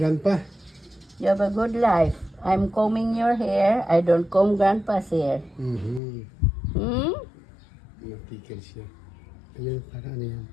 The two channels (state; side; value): drops out; right; at 6.0 s